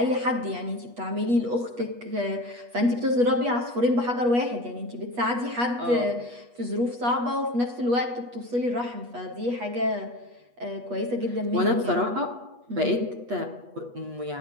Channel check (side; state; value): left; late; 8.3 ms